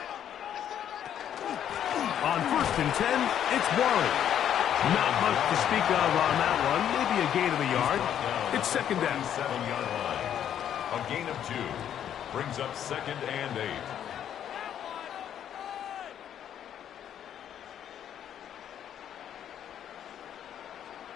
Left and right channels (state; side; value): quieter; right; 9.9 dB